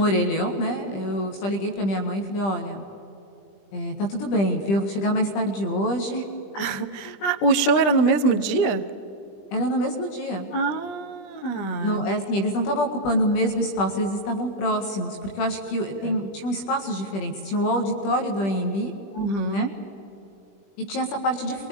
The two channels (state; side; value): late; right; 20 ms